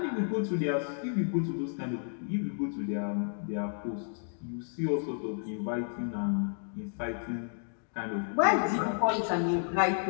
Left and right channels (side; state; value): right; silent; 57 dB below the other